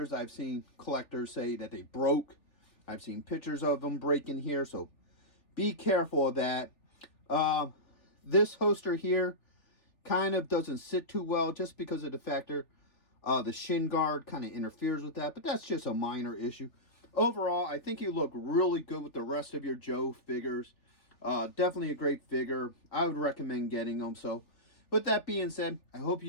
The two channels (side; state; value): right; late; 3.4 ms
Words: I've seen collectors say that they broke. I've seen pictures of them breaking here, so be careful of that. This holster here kind of doesn't sit too well just because of the factor the shin guard kind of interferes with that, but that's just a minor issue. Overall, I think you look really good with the rest of your Joe figures. Definitely a great figure. I would recommend getting them. So with that being said, I hope